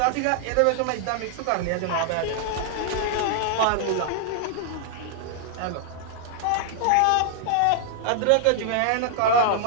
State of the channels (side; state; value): both; different; correlation -0.01